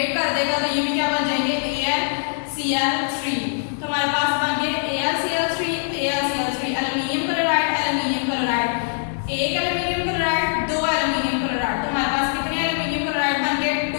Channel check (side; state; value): right; silent; digital silence